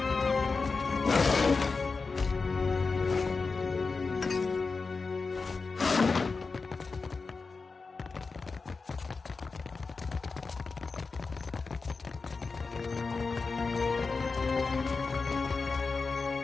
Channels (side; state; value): right; quieter; 4.3 dB